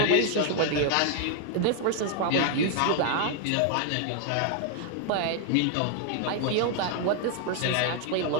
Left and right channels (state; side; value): different; both; correlation 0.00